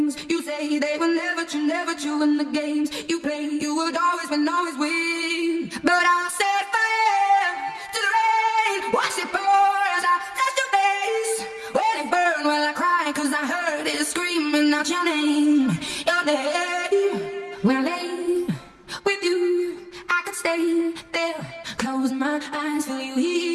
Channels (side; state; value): both; identical; correlation 1.00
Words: you say, they were never true, and the games you play, you would always win. But I'll set fire to the rain, watch it pour as I touch your face. When it burn, while I cry, cause I heard it screaming out your name. When I lay with you, I could stay there, close my eyes, feel you